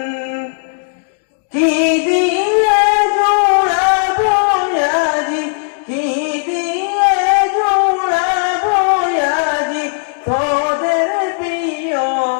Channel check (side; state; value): right; silent; digital silence